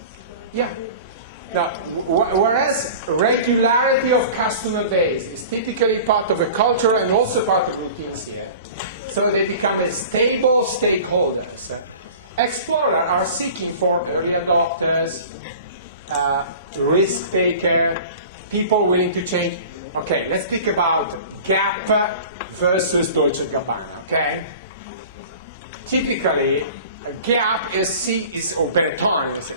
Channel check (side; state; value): both; inverted; correlation -0.40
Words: Yeah. Now, whereas regularity of customer base is typically part of a culture and also part of routines here, so they become a stable stakeholders. Explorers are seeking for early adopters, risk taker, people willing to change. Okay, let's speak about Gap versus Dolce & Gabbana, okay? Typically, Gap or Benetton,